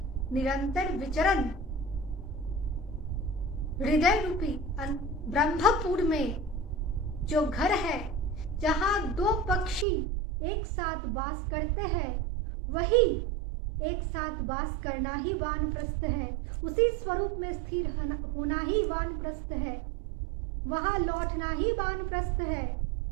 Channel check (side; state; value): left; drops out; at 9.9 s